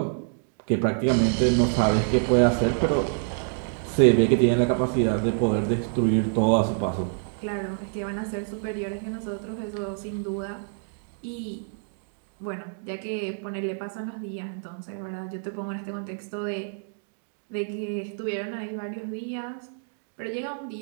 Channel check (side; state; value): left; silent; digital silence